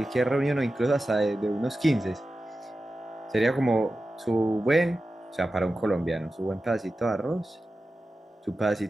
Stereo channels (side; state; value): both; normal; correlation 0.93